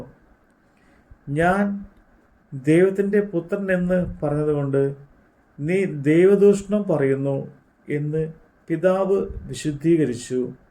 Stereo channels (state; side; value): identical; both; correlation 1.00